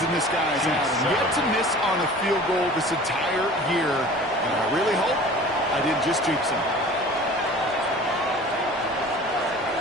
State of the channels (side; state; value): both; normal; correlation 0.43